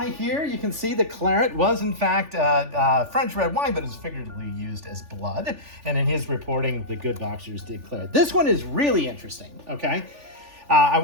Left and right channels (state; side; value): late; left; 3.4 ms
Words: here. You can see the claret was, in fact, French red wine, but is figuratively used as blood. And in his reporting, the good boxers did claret. This one is really interesting, okay? I